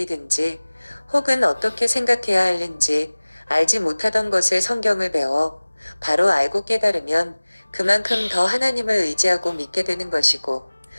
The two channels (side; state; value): both; inverted; correlation -1.00